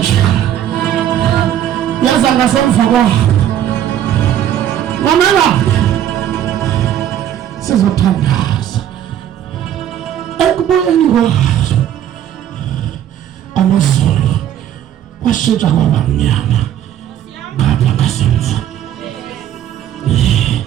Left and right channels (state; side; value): quieter; left; 10.8 dB